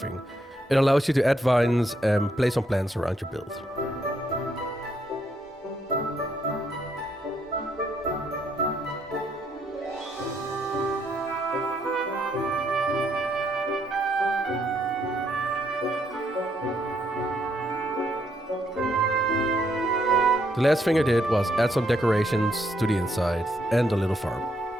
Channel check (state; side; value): normal; both; correlation 0.74